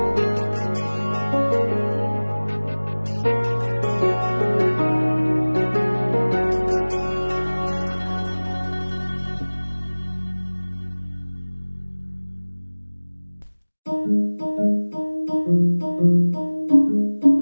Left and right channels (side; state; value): both; inverted; correlation -1.00